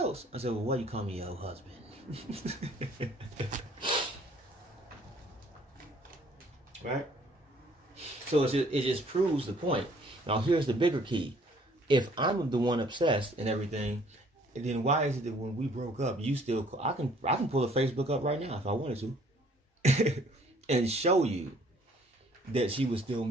I said, "Well, why you call me your husband?" Right? So it just proves the point. Now here's the bigger key. If I'm the one obsessed and everything, then why is it that when we broke up, you still I can pull a Facebook up right now if I wanted to and show you that she was still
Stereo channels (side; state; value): both; normal; correlation 0.59